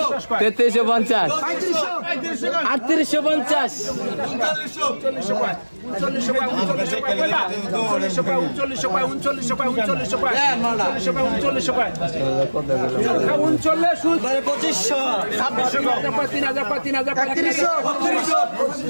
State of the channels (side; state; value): both; inverted; correlation -1.00